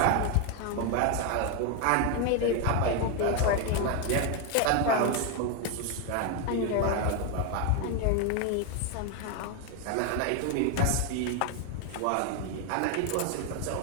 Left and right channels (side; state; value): both; different; correlation 0.01